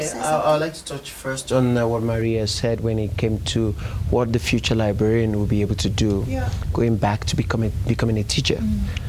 to say something? I'd like to touch first on what Maria said when it came to what the future librarian will be able to do, going back to becoming a teacher.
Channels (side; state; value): both; identical; correlation 1.00